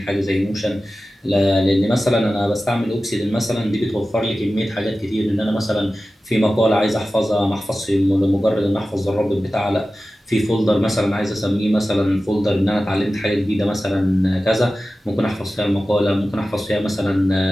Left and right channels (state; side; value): normal; both; correlation 0.95